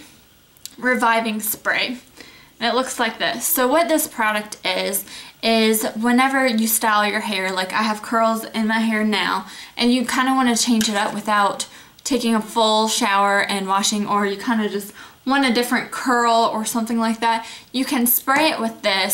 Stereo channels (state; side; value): identical; both; correlation 1.00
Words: Reviving Spray. And it looks like this. So what this product is whenever you style your hair, like I have curls in my hair now, and you kind of want to change it up without taking a full shower and washing, or you kind of just want a different curl or something like that, you can spray it with